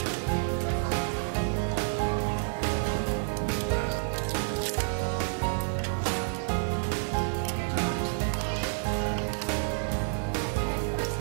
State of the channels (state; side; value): silent; left; 58 dB below the other